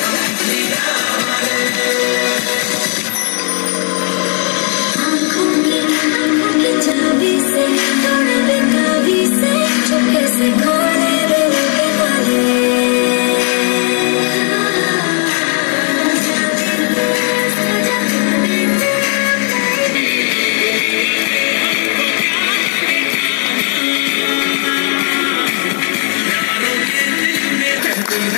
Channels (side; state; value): right; quieter; 37.4 dB